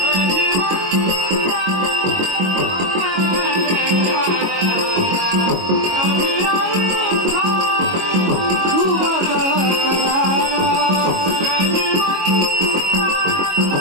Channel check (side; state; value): left; late; 22 ms